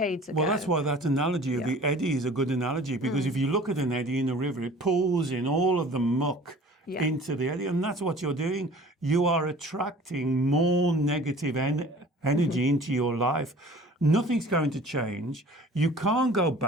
ago. Well, that's why that analogy of the eddy is a good analogy, because if you look at an eddy in a river, it pulls in all of the muck into the eddy, and that's what you're doing. You are attracting more negative energy into your life. Nothing's going to change. You can't go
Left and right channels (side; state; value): both; normal; correlation 0.47